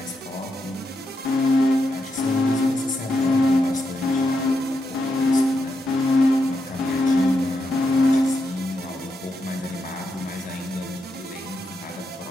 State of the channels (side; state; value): both; normal; correlation 0.83